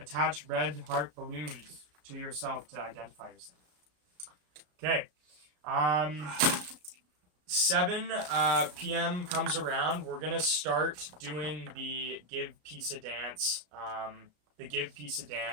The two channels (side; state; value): left; late; 34 ms